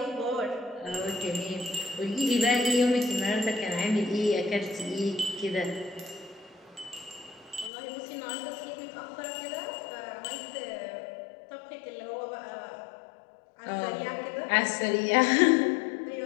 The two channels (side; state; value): right; drops out; at 7.7 s